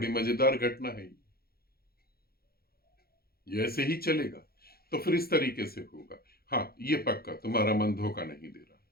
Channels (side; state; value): right; late; 0.44 ms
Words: मजेदार घटना है ये ऐसे ही चलेगा, तो फिर इस तरीके से होगा। हाँ, ये पक्का तुम्हारा मन धोखा नहीं दे रहा।